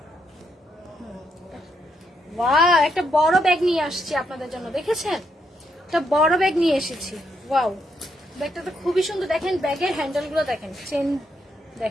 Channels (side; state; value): both; normal; correlation 0.78